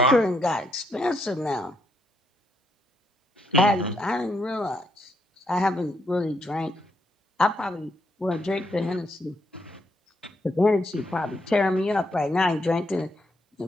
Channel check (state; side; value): normal; both; correlation 0.76